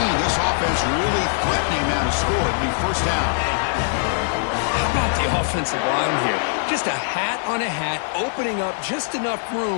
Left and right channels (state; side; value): silent; right; digital silence